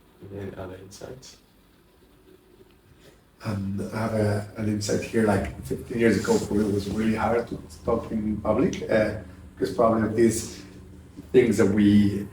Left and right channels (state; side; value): identical; both; correlation 1.00